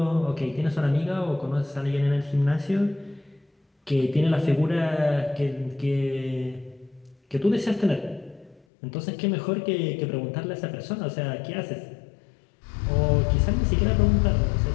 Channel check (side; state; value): right; drops out; at 8.6 s